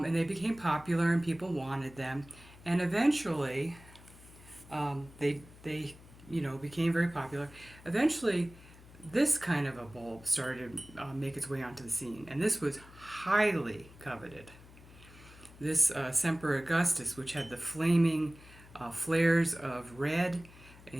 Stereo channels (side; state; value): left; noise; hum, 21 dB below the sound